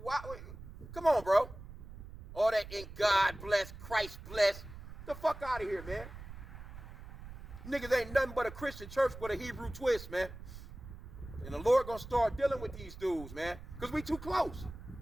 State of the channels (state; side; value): noise; right; rumble, 13 dB below the sound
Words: why? Come on, bro. All that in God bless, Christ bless. The fuck out of here, man. Niggas ain't nothing but a Christian church with a Hebrew twist, man. And the Lord gonna start dealing with these dudes, man. Because we too close.